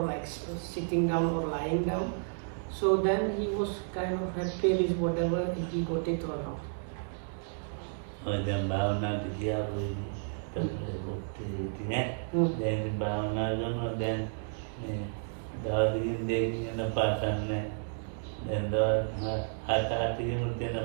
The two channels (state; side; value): silent; left; digital silence